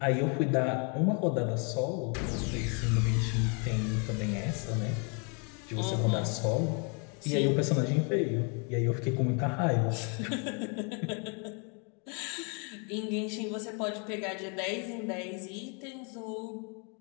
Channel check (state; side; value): quieter; right; 36.6 dB